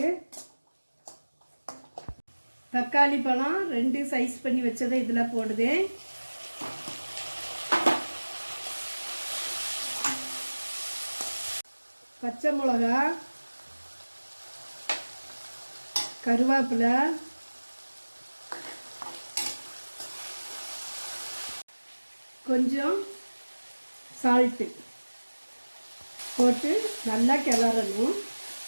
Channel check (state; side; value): inverted; both; correlation -1.00